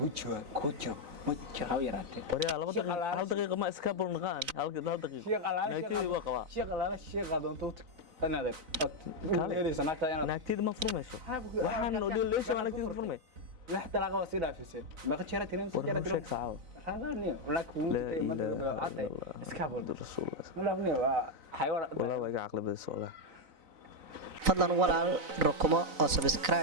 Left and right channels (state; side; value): late; left; 4.0 ms